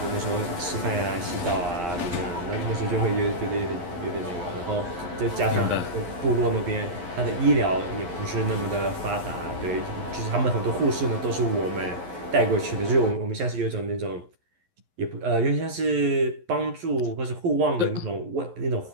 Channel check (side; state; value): left; late; 11 ms